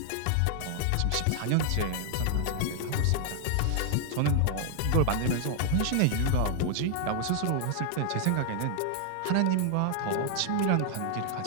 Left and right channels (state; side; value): different; both; correlation 0.00